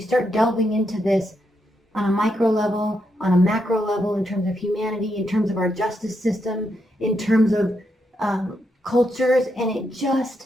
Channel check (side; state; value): both; normal; correlation 0.81